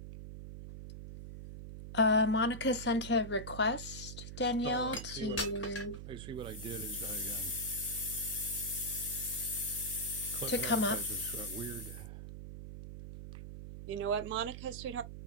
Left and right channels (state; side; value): noise; right; hum, 10 dB below the sound